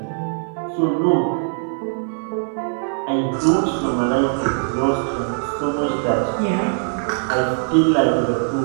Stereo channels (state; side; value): silent; left; digital silence